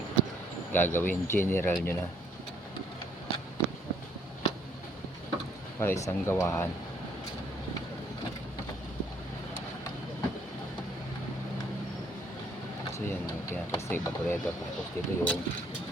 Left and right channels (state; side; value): normal; both; correlation 0.65